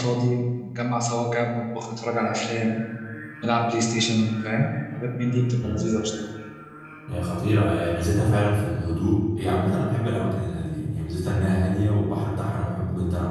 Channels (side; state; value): both; identical; correlation 1.00